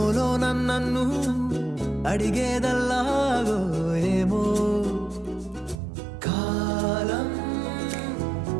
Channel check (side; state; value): left; drops out; at 5.8 s